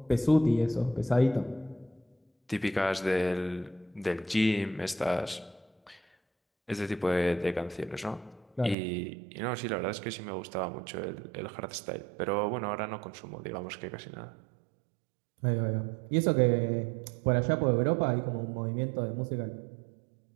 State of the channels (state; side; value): drops out; left; at 8.8 s